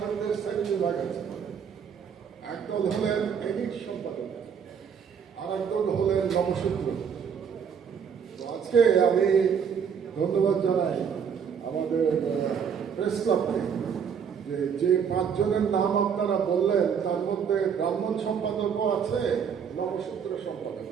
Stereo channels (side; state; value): left; quieter; 7.1 dB